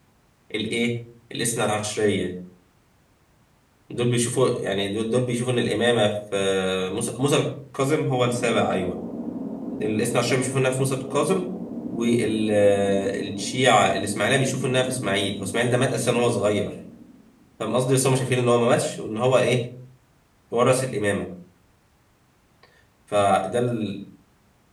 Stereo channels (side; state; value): both; identical; correlation 1.00